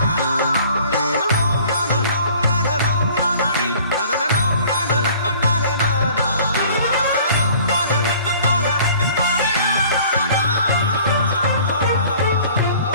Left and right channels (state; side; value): inverted; both; correlation -0.51